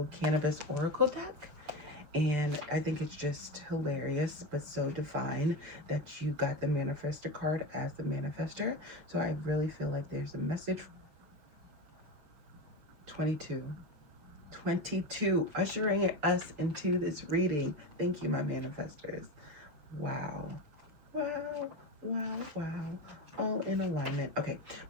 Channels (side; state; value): left; late; 6.7 ms